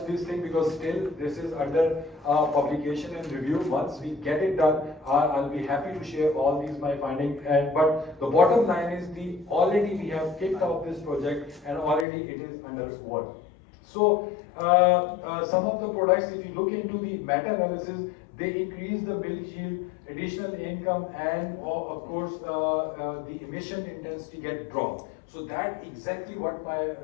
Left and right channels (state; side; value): drops out; right; at 12.1 s